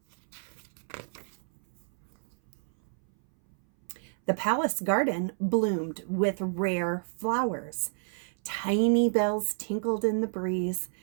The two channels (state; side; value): silent; left; 58 dB below the other